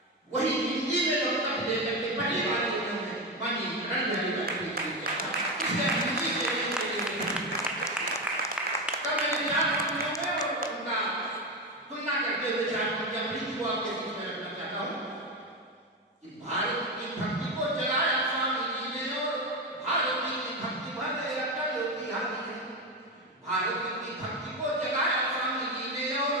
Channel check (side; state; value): both; normal; correlation 0.15